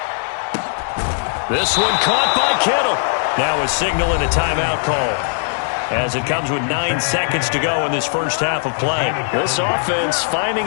This one caught by Kittle. Now a signal and a timeout call, as it comes with 9 seconds to go in this first half of play. This offense finding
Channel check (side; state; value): right; silent; digital silence